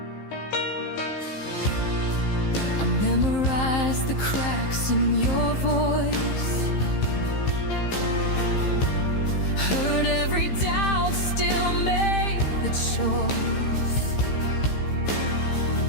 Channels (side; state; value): right; late; 15 ms